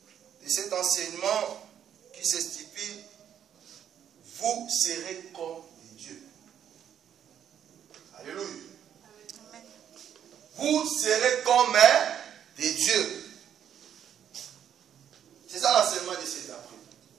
de cet enseignement qui s'intitule « Vous serez comme des dieux ». Alléluia. Amen. Vous serez comme des dieux. C'est ça l'enseignement de cet après.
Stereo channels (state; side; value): quieter; left; 9.4 dB